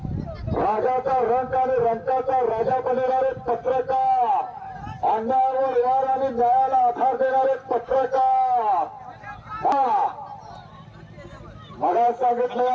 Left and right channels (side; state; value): both; identical; correlation 1.00